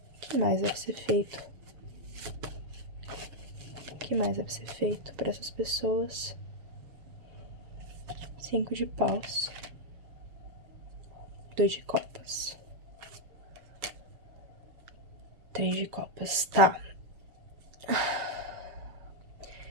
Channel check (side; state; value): left; late; 7.2 ms